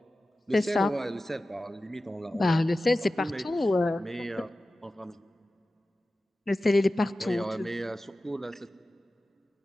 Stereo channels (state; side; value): normal; both; correlation 0.95